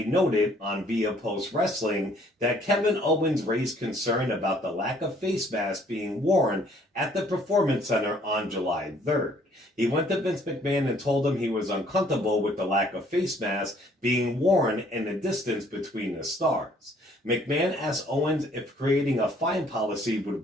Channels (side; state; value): both; normal; correlation 0.61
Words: noted on Via Post Wrestling that Kevin Owens raised concern about the lack of face masks being worn at the Performance Center on July 3rd. He went to Vince McMahon and told him he was uncomfortable with the lack of face masks being worn and the distance between the stars. McMahon asked Owens if creating a fine policy